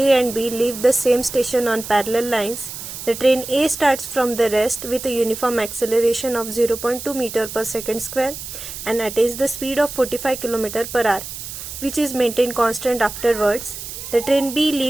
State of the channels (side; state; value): right; noise; hiss, 10 dB below the sound